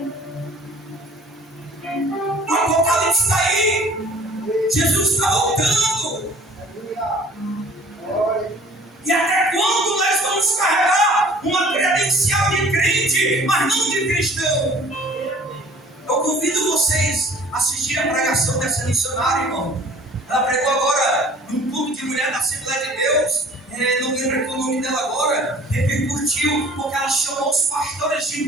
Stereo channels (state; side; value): normal; both; correlation 0.50